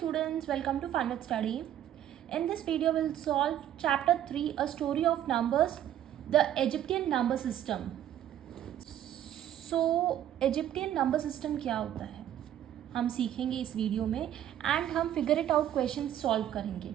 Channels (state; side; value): quieter; left; 11.2 dB